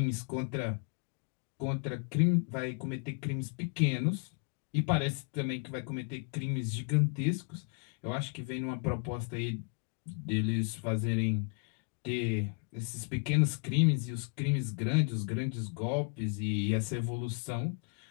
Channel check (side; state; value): right; quieter; 38.3 dB